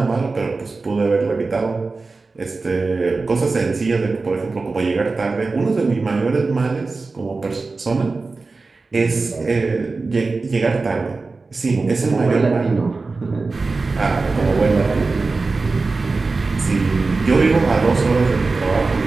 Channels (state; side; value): quieter; left; 3.9 dB